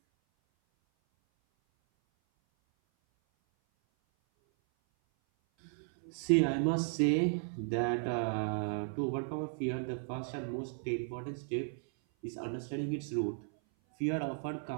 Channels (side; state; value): left; silent; 54 dB below the other